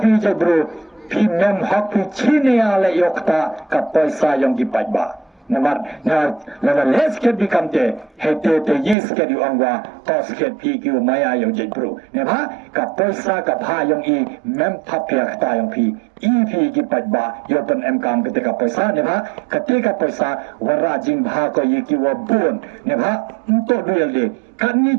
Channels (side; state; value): left; drops out; at 9.0 s